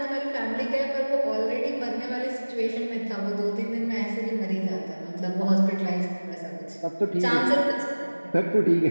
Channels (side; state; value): both; inverted; correlation -1.00